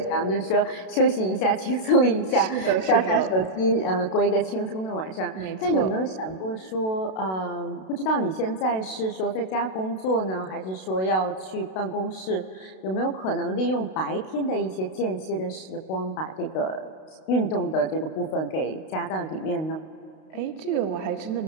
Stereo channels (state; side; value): late; right; 32 ms